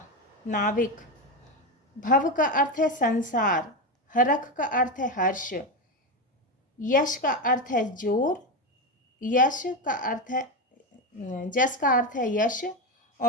नाविक। भव का अर्थ है संसार। हरख का अर्थ है हर्ष। यश का अर्थ है जोर। यश का अर्थ है जस का अर्थ है यश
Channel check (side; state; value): both; normal; correlation 0.14